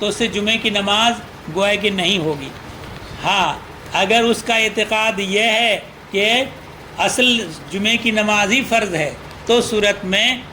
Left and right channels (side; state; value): both; identical; correlation 1.00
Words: اس سے جمعے کی نماز گویا کہ نہیں ہوگی. ہاں، اگر اس کا اعتقاد یہ ہے کہ اصل جمعے کی نماز ہی فرض ہے، تو صورت میں